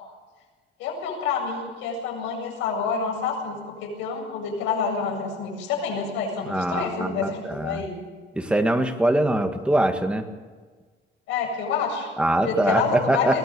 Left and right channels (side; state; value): both; normal; correlation 0.54